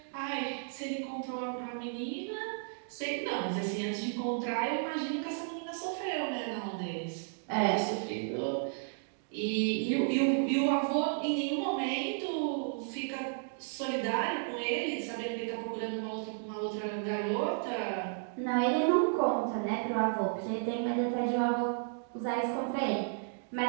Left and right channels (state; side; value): silent; left; digital silence